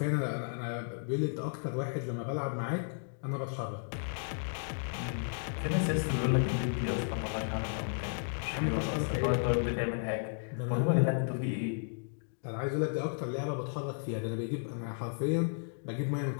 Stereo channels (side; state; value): right; silent; digital silence